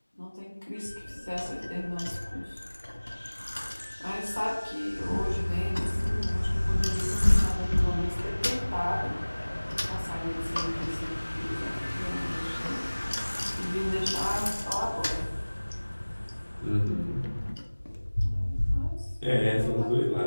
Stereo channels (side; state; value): both; inverted; correlation -1.00